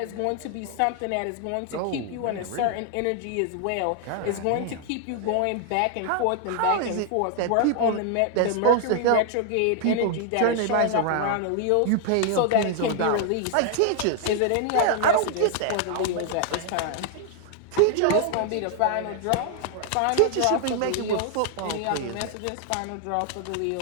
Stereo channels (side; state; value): both; different; correlation 0.00